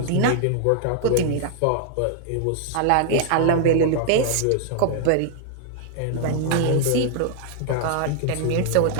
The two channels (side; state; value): both; different; correlation 0.00